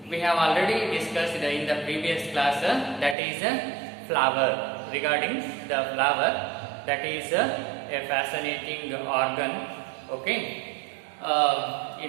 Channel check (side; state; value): left; drops out; at 3.2 s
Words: already discussed in the previous class, that is flower, regarding the flower, that is a fascinating organ, okay,